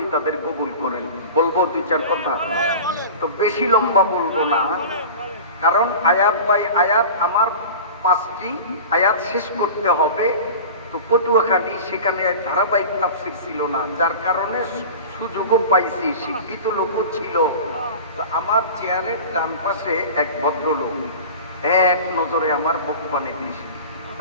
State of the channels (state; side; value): inverted; both; correlation -0.35